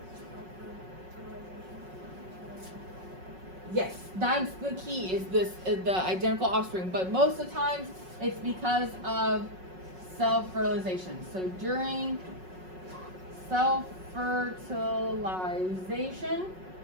Yes, that's the key, is the identical offspring. But most of the times, it's because of self-fertilization. So during self-fertilization,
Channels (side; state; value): left; late; 5.4 ms